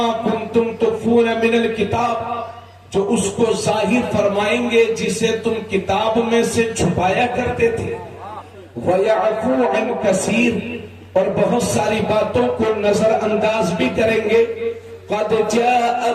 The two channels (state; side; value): identical; both; correlation 1.00